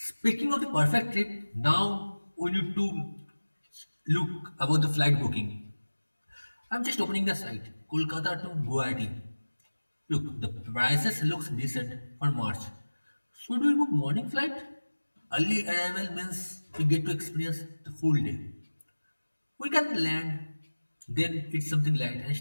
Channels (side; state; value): both; inverted; correlation -1.00